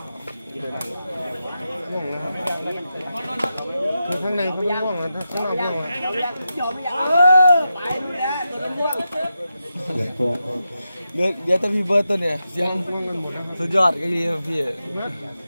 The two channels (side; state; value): both; inverted; correlation -0.89